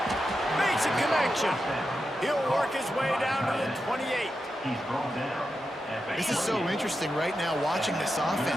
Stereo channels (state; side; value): normal; both; correlation 0.88